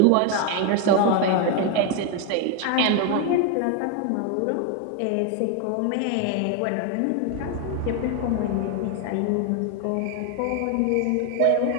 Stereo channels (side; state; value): both; different; correlation 0.01